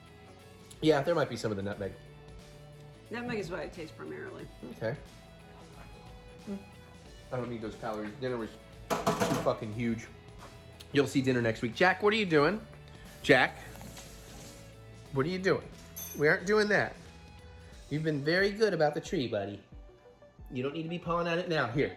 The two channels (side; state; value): both; identical; correlation 1.00